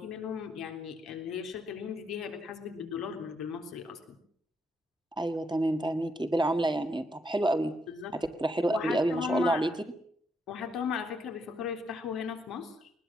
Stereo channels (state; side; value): normal; both; correlation 0.77